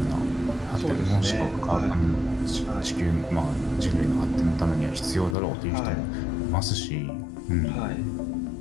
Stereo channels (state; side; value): drops out; right; at 5.4 s